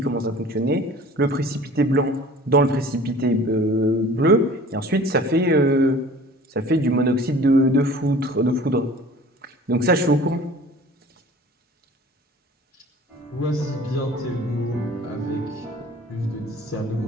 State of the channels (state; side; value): normal; both; correlation 0.46